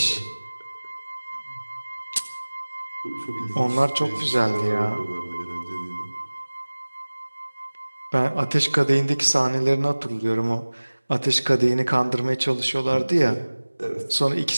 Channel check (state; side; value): inverted; both; correlation -1.00